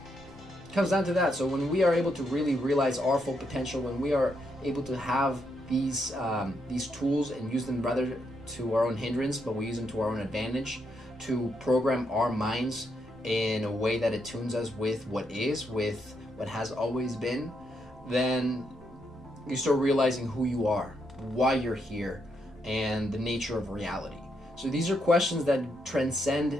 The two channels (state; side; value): normal; both; correlation 0.79